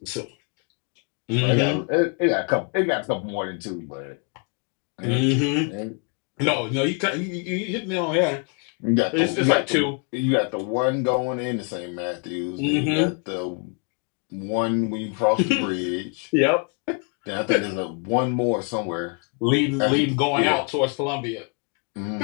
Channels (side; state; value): right; quieter; 38.4 dB